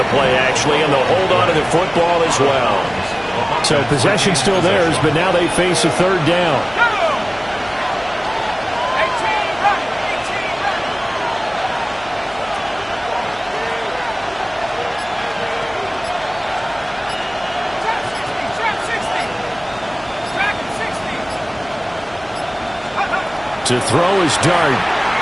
play, actually, and they'll hold on to the football as well. So possession still theirs, but now they face a 3rd down. To throw is Dart.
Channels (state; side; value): noise; left; hum, 23 dB below the sound